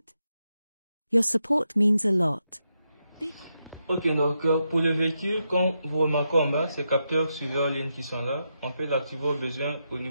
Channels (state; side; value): inverted; both; correlation -0.84